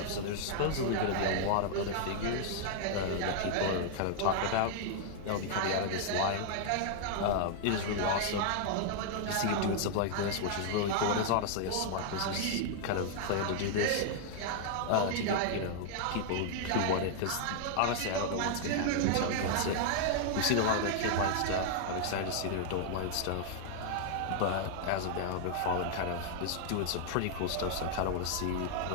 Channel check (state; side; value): different; both; correlation -0.01